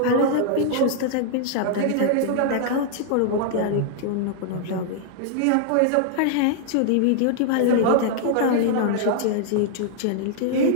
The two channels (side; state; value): both; different; correlation -0.01